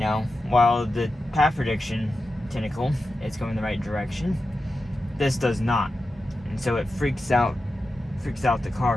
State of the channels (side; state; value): both; normal; correlation 0.91